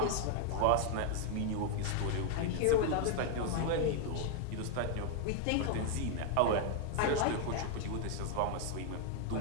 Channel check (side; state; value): both; different; correlation 0.00